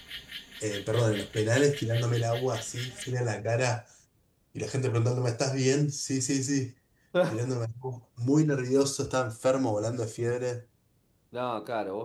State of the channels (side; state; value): both; identical; correlation 1.00